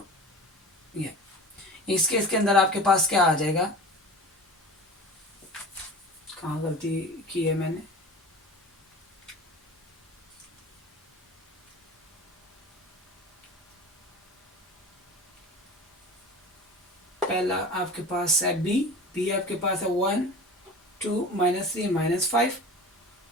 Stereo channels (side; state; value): both; normal; correlation 0.35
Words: ये इस केस के अंदर आपके पास क्या आ जाएगा, कहाँ गलती की है मैंने, पहला आपके पास है बी आपके पास है 1 2 -3 -5,